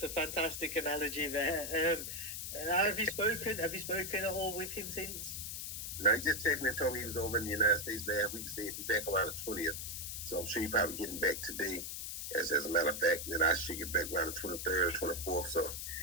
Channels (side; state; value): left; noise; hiss, 5 dB below the sound